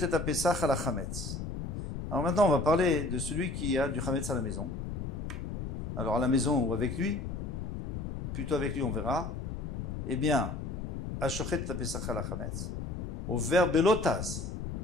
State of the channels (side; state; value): left; noise; rumble, 5 dB below the sound